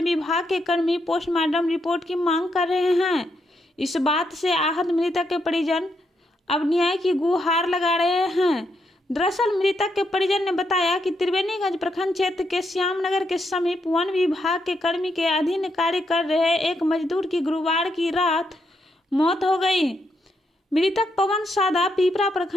विभाग के कर्मी पोस्टमार्टम रिपोर्ट की मांग कर रहे हैं। इस बात से आहत मृतक के परिजन अब न्याय की गुहार लगा रहे हैं। दरअसल मृतक के परिजन ने बताया कि त्रिवेणीगंज प्रखंड क्षेत्र के श्यामनगर के समीप वन विभाग के कर्मी के अधीन कार्य कर रहे एक मजदूर की गुरुवार की रात मौत हो गई। मृतक पवन सादा पीपरा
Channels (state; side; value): normal; both; correlation 0.79